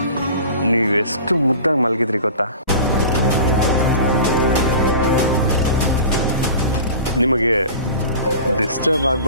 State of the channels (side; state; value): both; inverted; correlation -0.38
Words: ನೀವೆಷ್ಟು ಮುದ್ದಾಗಿ ಮಲಗಿದ್ರಿ ಗೊತ್ತಾ? ನಿಮಗೆ ಡಿಸ್ಟರ್ಬ್